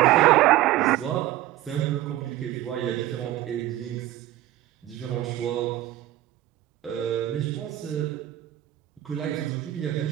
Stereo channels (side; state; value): left; quieter; 14.5 dB